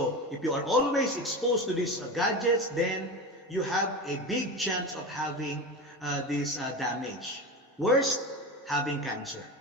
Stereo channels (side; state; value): both; normal; correlation 0.25